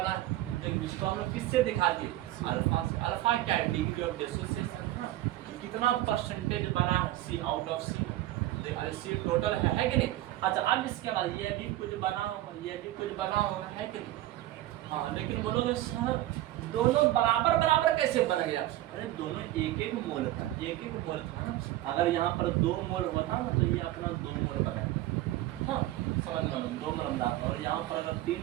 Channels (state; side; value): quieter; left; 15.2 dB